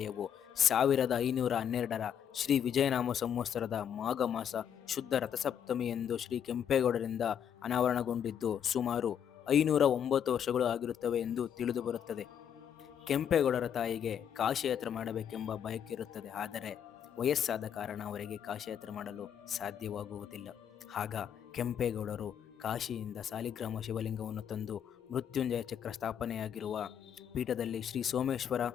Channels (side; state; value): right; quieter; 8.8 dB